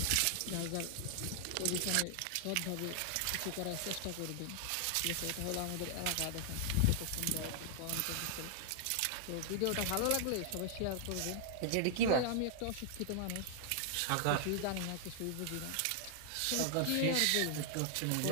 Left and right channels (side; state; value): both; different; correlation 0.00